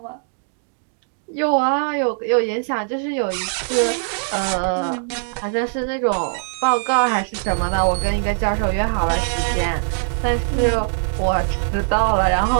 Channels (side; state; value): left; silent; digital silence